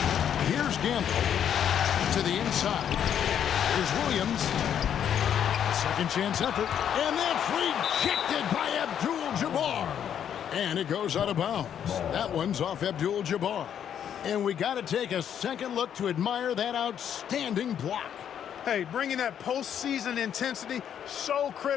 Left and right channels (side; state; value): right; quieter; 9.1 dB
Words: Here's Gamble to the inside. Here's Williams. Second chance effort. And that's rejected by Abdul-Jabbar. And it goes out of bounds. That one's off Abdul-Jabbar. And we got to take a second look to admire that outstanding block. Hey, bringing that postseason intensity, so